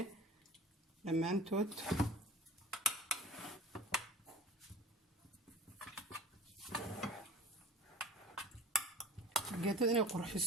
dhammaantood geedada inay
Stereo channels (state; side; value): normal; both; correlation 0.40